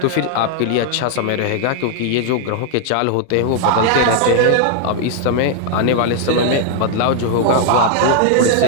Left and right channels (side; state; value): both; different; correlation 0.00